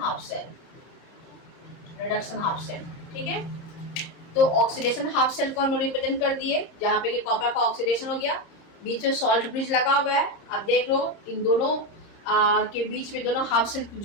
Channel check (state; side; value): late; right; 30 ms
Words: half cell, reduction half cell, ठीक है। तो ऑक्सीडेशन हाफ सेल को हम लोग रिप्रेजेंट कर दिए, जहां पे ये कॉपर का ऑक्सीडेशन हो गया, बीच में सॉल्ट ब्रिज लगा हुआ है। अब देख लो इन दोनों के बीच में दोनों हाफ सेल